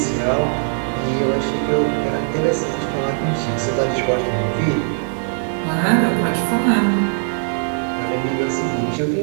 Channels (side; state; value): left; silent; 66 dB below the other